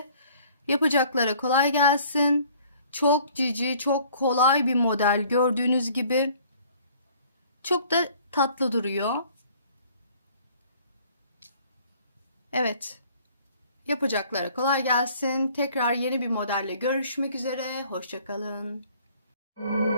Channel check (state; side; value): inverted; both; correlation -0.55